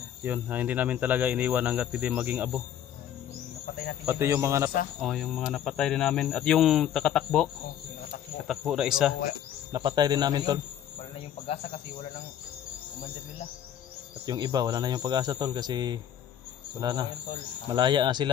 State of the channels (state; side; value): quieter; right; 10.2 dB